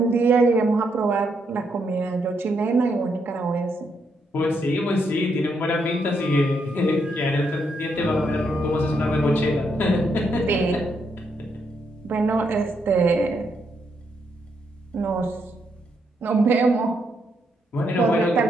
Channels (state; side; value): normal; both; correlation 0.77